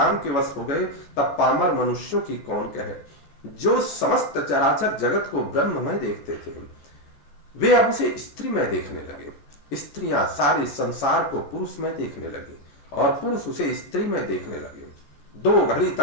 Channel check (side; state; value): right; late; 14 ms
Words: के वश हो गए, तब पामर मनुष्यों की कौन कहे। जो समस्त चराचर जगत को ब्रह्म में देखते थे, वे अब उसे स्त्री में देखने लगे। स्त्रियां सारे संसार को पुरुष में देखने लगी और पुरुष उसे स्त्री में देखने लगे। 2 घड़ी